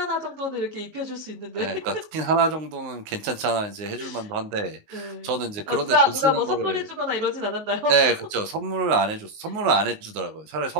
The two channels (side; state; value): left; late; 19 ms